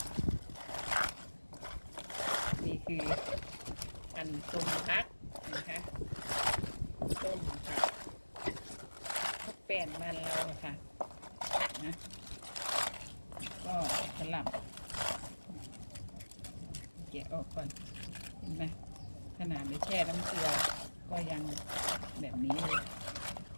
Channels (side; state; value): both; inverted; correlation -1.00